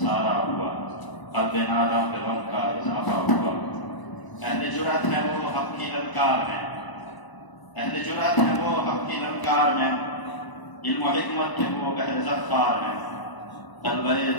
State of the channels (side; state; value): right; late; 1.0 ms